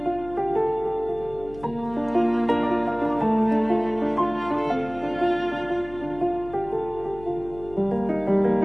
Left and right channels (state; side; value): noise; left; hum, 19 dB below the sound